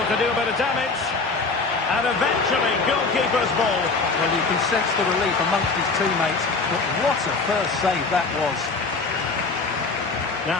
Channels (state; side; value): quieter; right; 4.1 dB